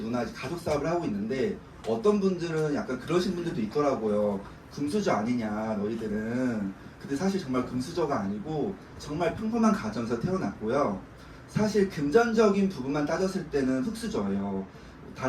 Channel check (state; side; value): identical; both; correlation 1.00